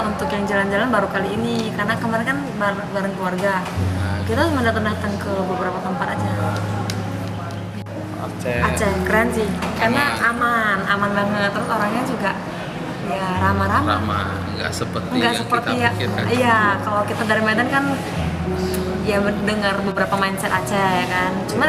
untuk yang jalan-jalan baru kali ini, karena kemarin kan bareng keluarga. Kita cuma datang ke beberapa tempat aja. Aceh keren sih, karena aman banget. Terus orangnya juga ya ramah-ramah. Nggak seperti ya. Iya, kalau kita dari Medan kan ya mendengar beberapa mindset Aceh kan.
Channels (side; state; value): both; identical; correlation 1.00